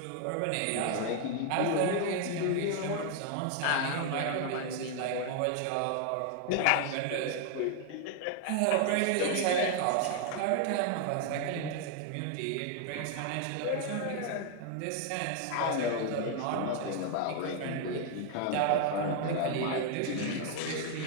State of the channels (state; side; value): different; both; correlation 0.00